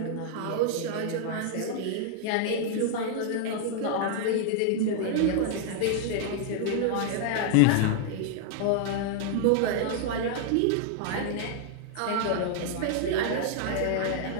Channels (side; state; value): both; different; correlation 0.00